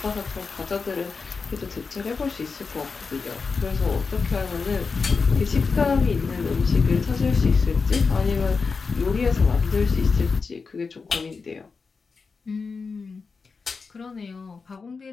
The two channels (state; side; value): quieter; right; 4.8 dB